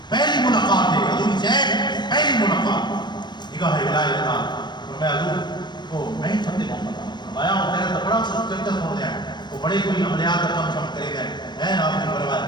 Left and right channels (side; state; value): right; late; 0.21 ms